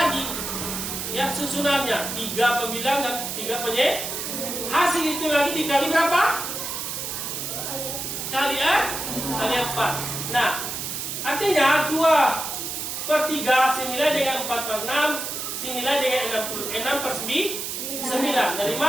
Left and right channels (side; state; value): right; noise; hiss, 4 dB below the sound